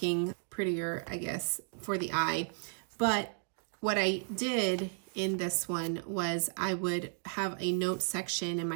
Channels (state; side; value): silent; left; digital silence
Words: prettier, I guess, for the eye. But what I did in this one was I would have a note section, and